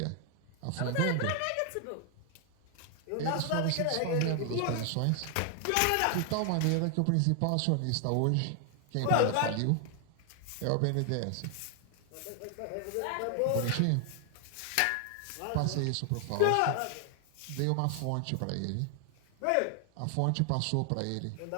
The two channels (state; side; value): different; both; correlation 0.00